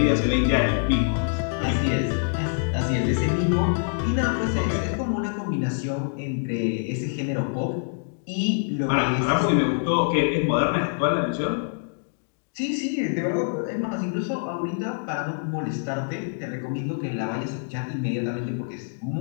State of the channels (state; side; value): silent; right; digital silence